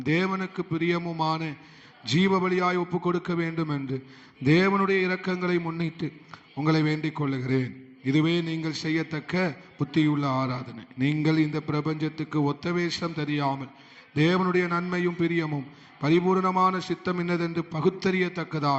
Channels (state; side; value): identical; both; correlation 1.00